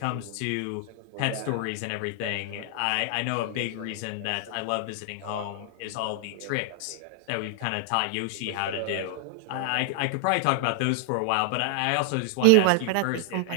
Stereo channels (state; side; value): different; both; correlation 0.00